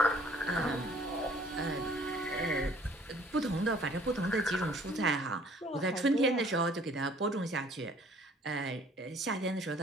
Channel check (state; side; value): normal; both; correlation 0.56